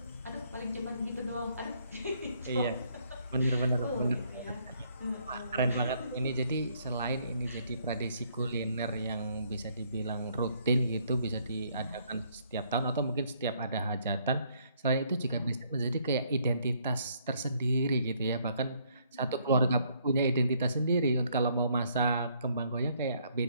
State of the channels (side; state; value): both; inverted; correlation -0.67